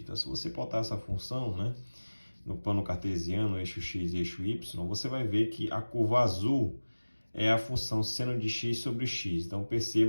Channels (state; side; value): inverted; both; correlation -1.00